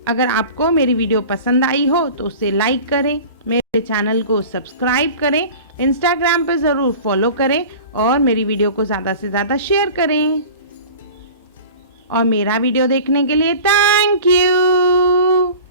अगर आपको मेरी वीडियो पसंद आई हो तो उसे लाइक करें, मेरे चैनल को सब्सक्राइब करें, इंस्टाग्राम पे ज़रूर फॉलो करें और मेरी वीडियो को ज़्यादा से ज़्यादा शेयर करें। और मेरा वीडियो देखने के लिए थैंक यू।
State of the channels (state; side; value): inverted; both; correlation -0.39